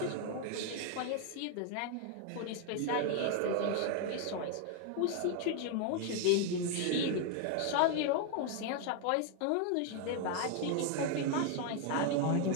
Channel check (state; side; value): different; both; correlation 0.00